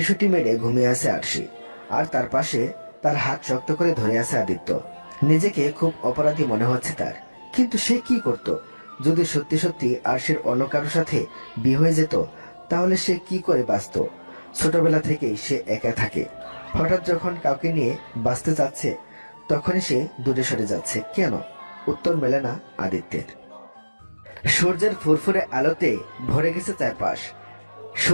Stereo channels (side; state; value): both; inverted; correlation -1.00